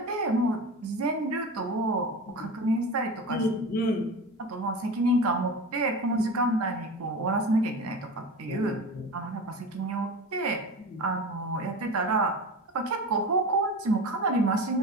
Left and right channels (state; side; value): normal; both; correlation 0.30